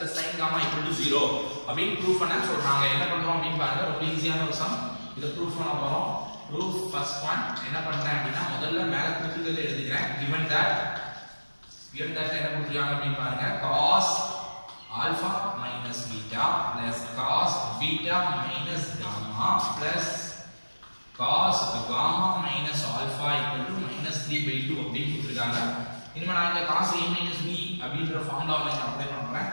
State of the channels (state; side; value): inverted; both; correlation -1.00